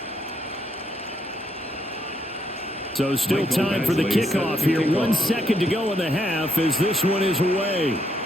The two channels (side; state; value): both; normal; correlation 0.75